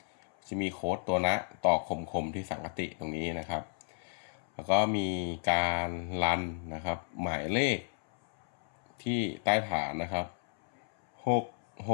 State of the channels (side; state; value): right; silent; 56 dB below the other